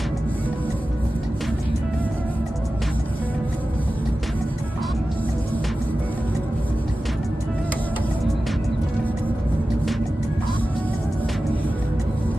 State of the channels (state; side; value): normal; both; correlation 0.94